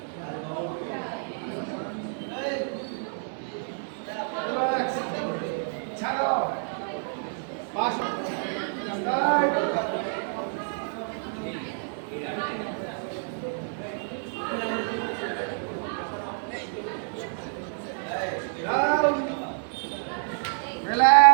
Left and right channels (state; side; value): silent; left; 59 dB below the other